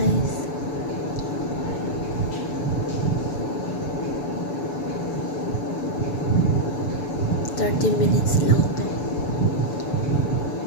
$30 lang to.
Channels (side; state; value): right; late; 6.9 ms